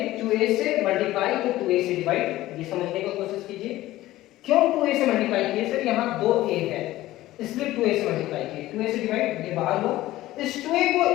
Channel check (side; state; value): right; quieter; 16.1 dB